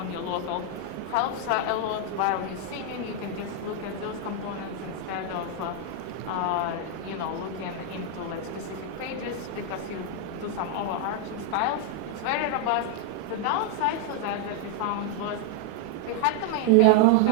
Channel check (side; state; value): both; different; correlation 0.00